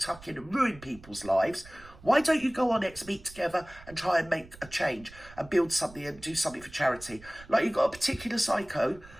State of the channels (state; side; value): noise; right; rumble, 20 dB below the sound